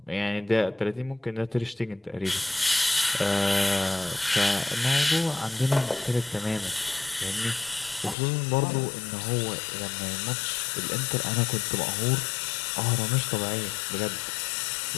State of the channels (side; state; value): right; drops out; at 8.2 s